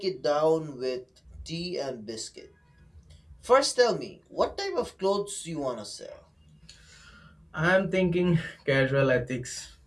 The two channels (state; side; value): identical; both; correlation 1.00